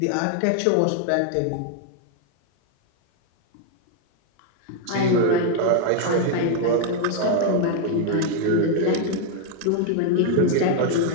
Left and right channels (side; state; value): both; different; correlation 0.01